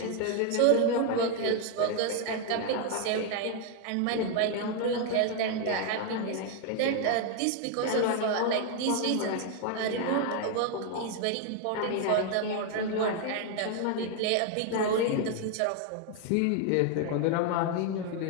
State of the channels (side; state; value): both; different; correlation 0.01